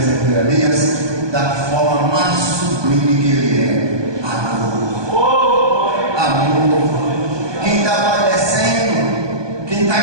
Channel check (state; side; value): late; left; 1.2 ms